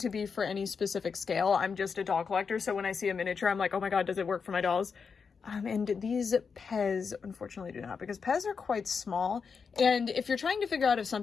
to be for any specific scale. I'm just a doll collector, so when I see a miniature, I'm like, oh my god, does it work for my dolls? And these Pez, unfortunately, do not, because Pez are quite small. And if you're trying to figure out if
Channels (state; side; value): quieter; right; 5.7 dB